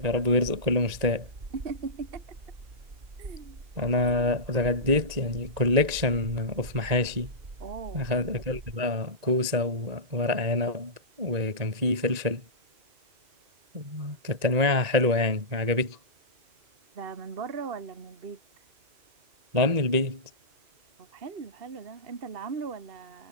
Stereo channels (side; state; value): left; late; 1.9 ms